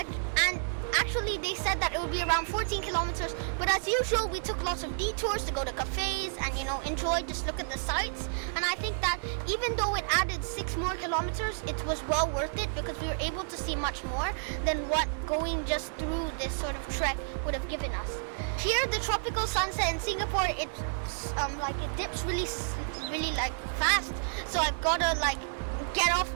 actually they said that it would be around 14 kilometers. But as usual, we took lots of detours to go to cafes and enjoy, just look at the sights. And I think that even though it added 6 more kilometers, it was well worth it because we were able to see much more than what going just through this sort of trek would have given us. Here, the tropical sunset in Singapore, it dips really like fast. So I've gotta get off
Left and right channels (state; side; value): silent; left; 57 dB below the other